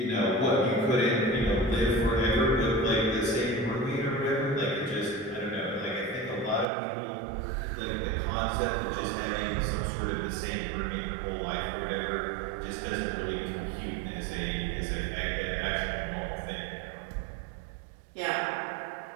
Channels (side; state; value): left; drops out; at 6.7 s